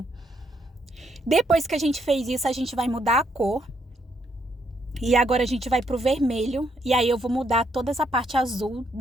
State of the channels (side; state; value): both; normal; correlation 0.74